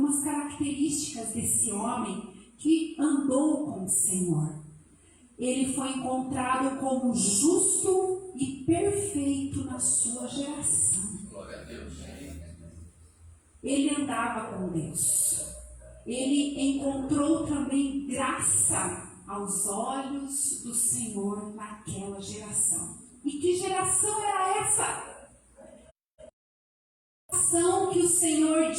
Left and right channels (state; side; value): identical; both; correlation 1.00